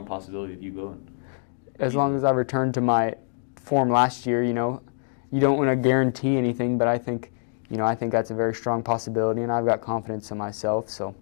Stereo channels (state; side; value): silent; right; digital silence